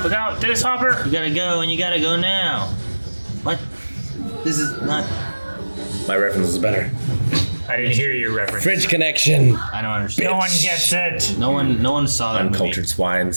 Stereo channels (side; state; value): both; inverted; correlation -1.00